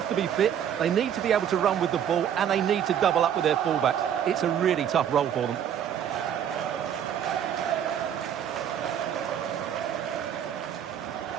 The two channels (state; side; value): quieter; left; 9.3 dB